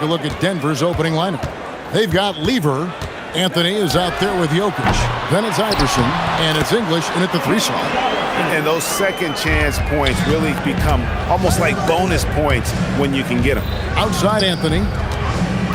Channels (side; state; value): both; identical; correlation 1.00